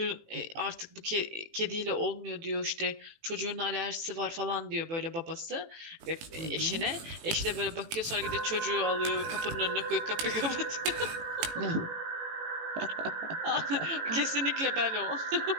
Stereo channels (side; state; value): left; late; 18 ms